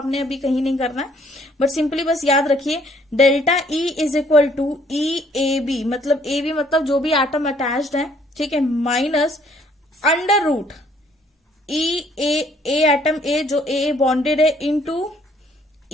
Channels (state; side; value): normal; both; correlation 0.64